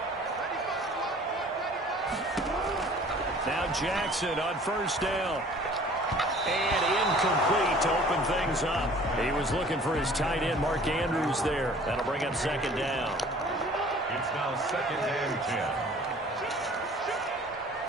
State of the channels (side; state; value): both; normal; correlation 0.50